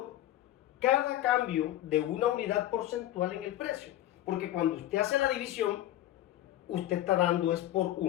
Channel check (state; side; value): quieter; right; 13.9 dB